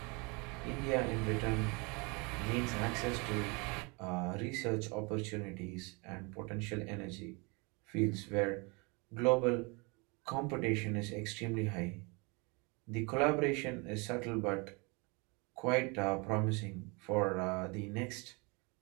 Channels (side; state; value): left; quieter; 29.6 dB